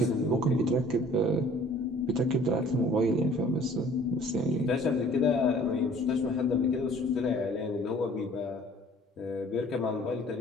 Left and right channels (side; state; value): both; normal; correlation 0.53